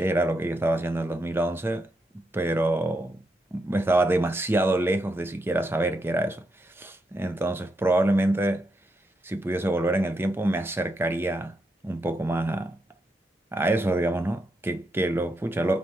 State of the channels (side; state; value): both; normal; correlation 0.82